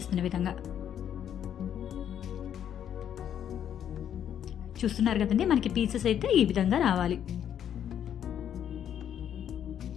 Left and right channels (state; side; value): quieter; right; 9.5 dB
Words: విధంగా. చూస్తున్నారు కదండి, మనకి పీసెస్ అయితే ఈ విధంగా రావాలి.